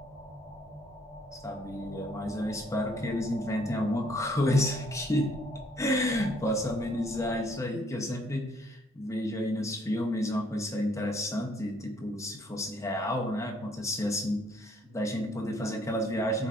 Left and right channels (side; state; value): both; normal; correlation 0.64